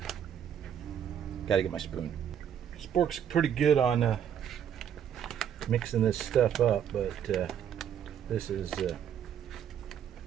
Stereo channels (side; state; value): left; quieter; 9.0 dB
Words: get my spoon. Spork's pretty good on mixing this stuff up, but this is